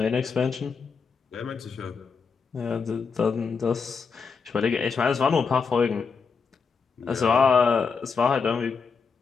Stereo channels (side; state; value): right; quieter; 5.4 dB